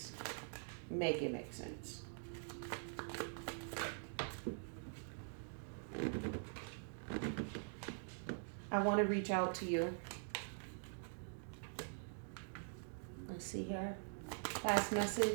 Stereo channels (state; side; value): silent; left; digital silence